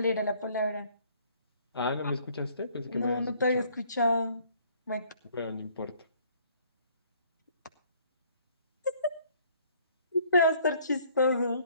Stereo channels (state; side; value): inverted; both; correlation -0.60